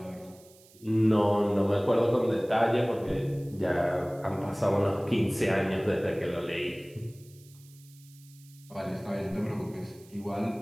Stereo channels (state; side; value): noise; right; hiss, 26 dB below the sound